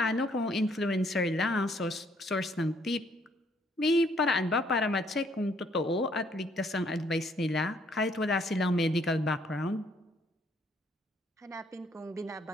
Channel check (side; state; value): both; normal; correlation 0.67